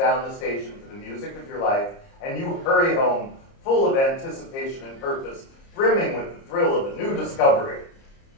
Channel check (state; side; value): late; right; 30 ms